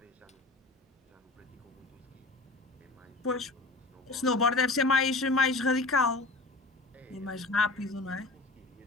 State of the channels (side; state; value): right; quieter; 3.2 dB